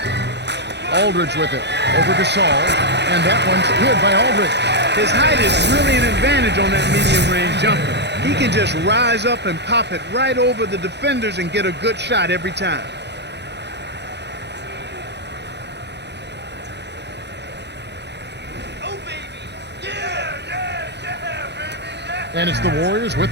Aldridge with it. Over to Saul. And that one's good by Aldridge. His height is really an advantage on that medium-range jumper. He can just rise up and pop it right over the defenders and get a good shot every time. Oh, baby. Yeah, baby. And it's the Warriors with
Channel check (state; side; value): late; left; 0.50 ms